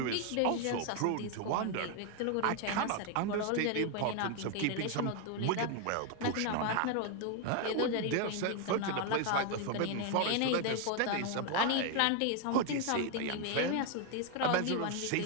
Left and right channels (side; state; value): both; different; correlation 0.01